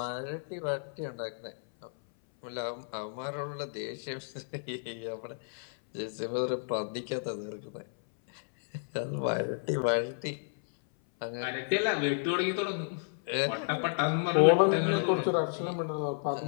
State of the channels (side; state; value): right; silent; 57 dB below the other